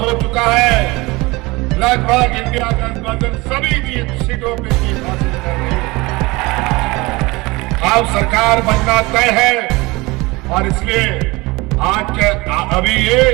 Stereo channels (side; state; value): left; quieter; 23.0 dB